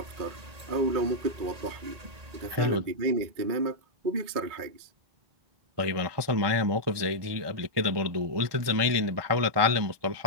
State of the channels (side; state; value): left; late; 1.2 ms